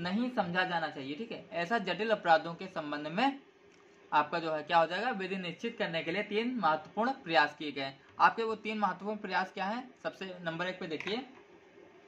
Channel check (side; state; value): both; identical; correlation 1.00